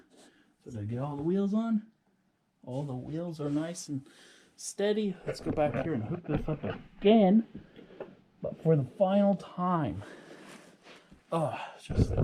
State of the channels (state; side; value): identical; both; correlation 1.00